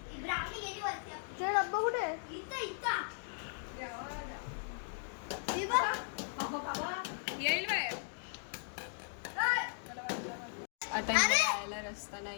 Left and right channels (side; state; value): right; silent; digital silence